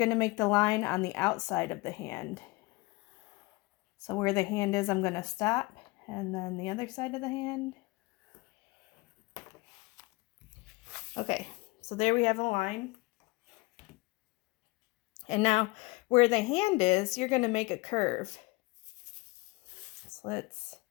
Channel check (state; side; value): quieter; right; 23.7 dB